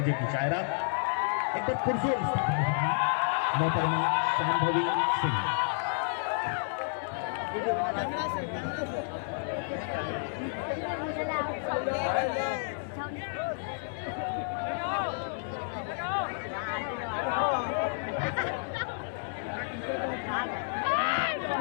की शायरा, एक बार पुरजोर मोहतरमा शांभवी सिंह।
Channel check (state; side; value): silent; right; digital silence